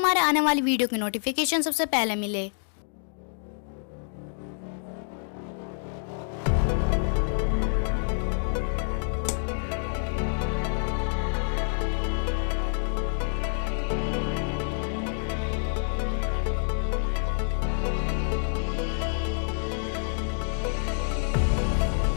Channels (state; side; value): silent; right; digital silence